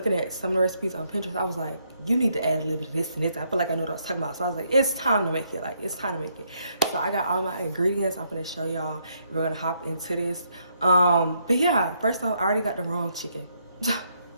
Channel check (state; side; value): inverted; both; correlation -0.73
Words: at some of the recipes on Pinterest. I was like, you need to add a little bit of this and this. I feel like I know what I was talking about. So I was like, it's time to make it. Like, it's time to make it. So I got all my ingredients. I'm gonna show y'all. We're gonna hop into this. But yeah, first off, I already got the wrong chicken.